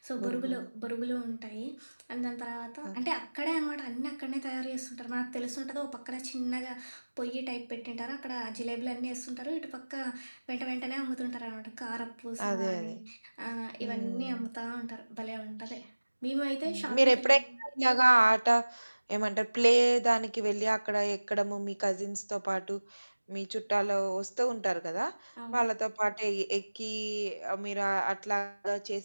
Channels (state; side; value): inverted; both; correlation -1.00